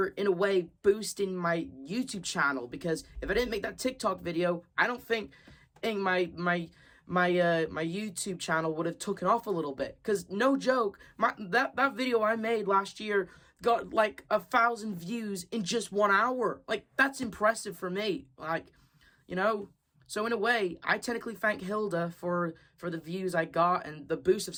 in a way boosting my YouTube channel, because if I didn't make that TikTok video, I don't think my YouTube channel would have taken off a little bit. Because no joke, that video I made last year got 1,000 views in just 1 hour. That's impressive for me. So in a way, I technically thank Hilda for the views I got and the boost of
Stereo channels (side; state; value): both; identical; correlation 1.00